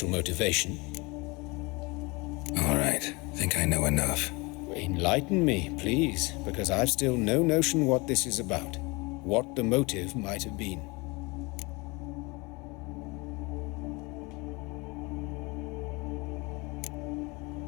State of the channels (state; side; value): quieter; right; 26.0 dB